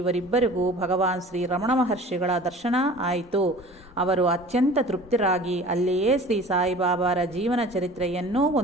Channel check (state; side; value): normal; both; correlation 0.43